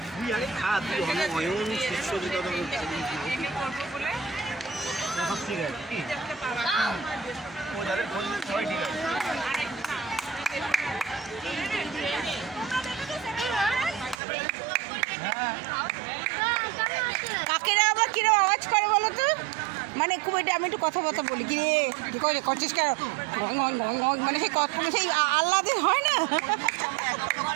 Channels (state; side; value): drops out; left; at 14.2 s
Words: তুই আগে খা, তুই অয়ন শিষ্যদিতা সব ঠিক আছে কি ও যাদের ফোন সবাই ঠিক আছে। কাকেরা আবার কিরকম আওয়াজ করে বলো তো, মানে খুব এটা আমি একটু কথাবার্তা বলি কি রে কি করছিস কেন, মানে সেই সেই আল্লাদের হয় না,